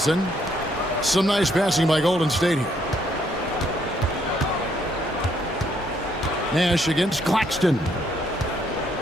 Some nice passing by Golden State here. Nash against Claxton.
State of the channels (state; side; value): normal; both; correlation 0.70